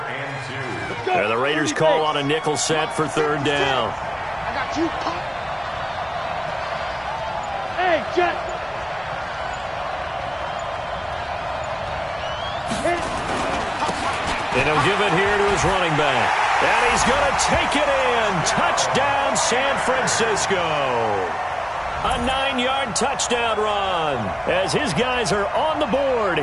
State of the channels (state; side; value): identical; both; correlation 1.00